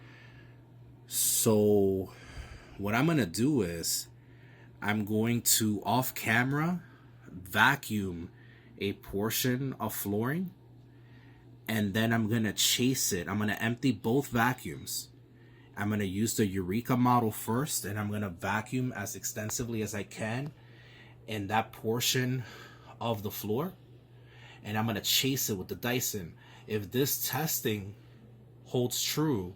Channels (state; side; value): identical; both; correlation 1.00